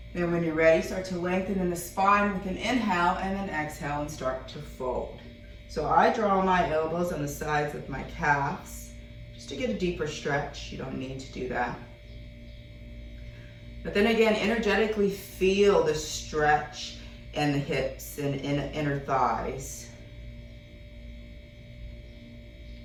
Then when you're ready, start to lengthen in the spine with an inhale and then exhale and start to fold. So I draw my elbows on the sides of my calves just to get a deeper stretch. You don't need to do that. But then again, energetically feel the stretch in the hips and in inner thighs.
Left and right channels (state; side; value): identical; both; correlation 1.00